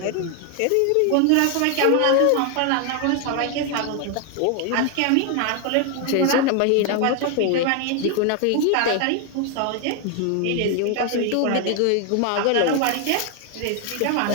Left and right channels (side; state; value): both; different; correlation 0.01